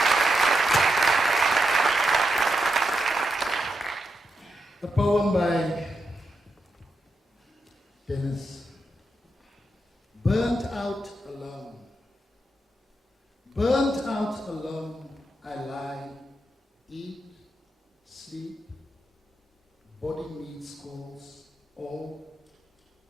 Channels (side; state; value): both; normal; correlation 0.85